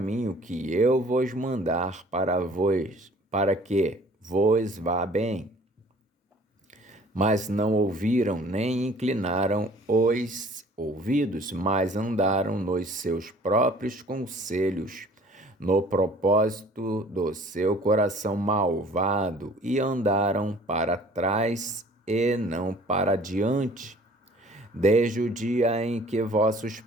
que eu vos mandar para que vos vá bem. Mas não ouviram, nem inclinaram os ouvidos, mas andaram nos seus próprios conselhos, no propósito do seu coração malvado, e andaram para trás e não para diante. Desde o dia em que vossos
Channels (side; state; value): both; normal; correlation 0.52